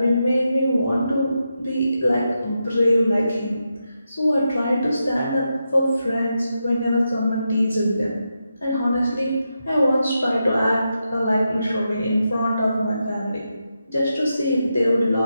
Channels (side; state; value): both; inverted; correlation -0.86